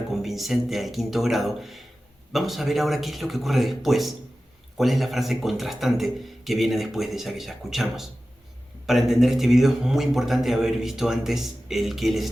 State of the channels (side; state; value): both; normal; correlation 0.95